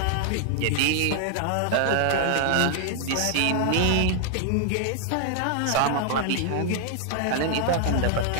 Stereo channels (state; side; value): different; both; correlation 0.00